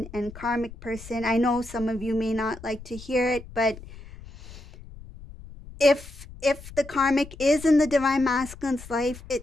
and karmic person. I know some of you may not like to hear it, but if the karmic is in the divine masculine's life,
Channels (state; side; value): noise; left; rumble, 16 dB below the sound